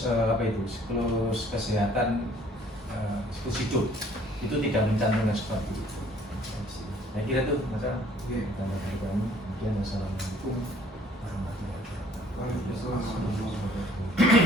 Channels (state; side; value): normal; both; correlation 0.58